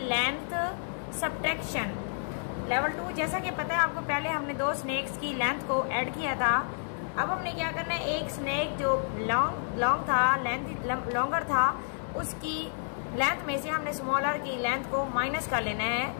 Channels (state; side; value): silent; right; digital silence